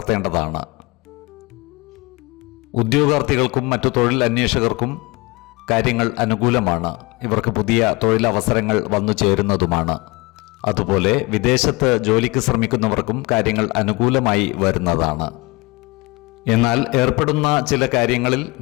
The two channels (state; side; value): quieter; right; 24.7 dB